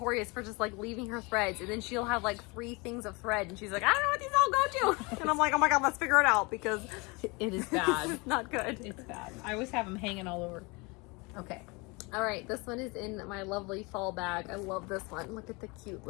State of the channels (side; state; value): right; quieter; 27.3 dB